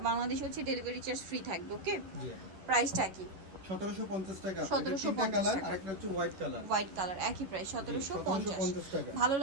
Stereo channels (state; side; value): late; left; 11 ms